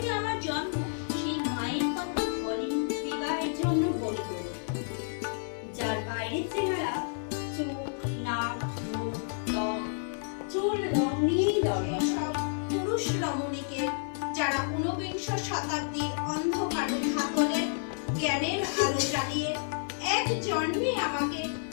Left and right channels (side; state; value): right; silent; 58 dB below the other